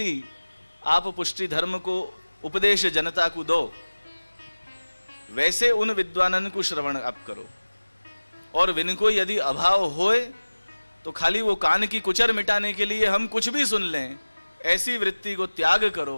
आप पुष्टि धर्म को उपदेश जनता को दो, वैसे उन विद्वानन को श्रवण आप करो। और विनको यदि अभाव होए तो खाली वो कान की कुचर मिटाने के लिए हम कुछ भी सुन लें, ऐसी वृत्ति को त्याग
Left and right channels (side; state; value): both; inverted; correlation -1.00